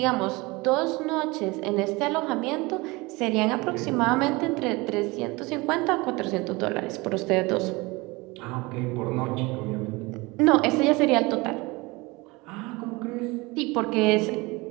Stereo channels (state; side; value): quieter; left; 24.0 dB